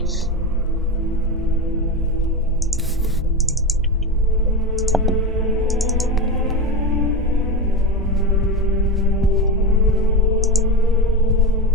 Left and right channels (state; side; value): normal; both; correlation 0.20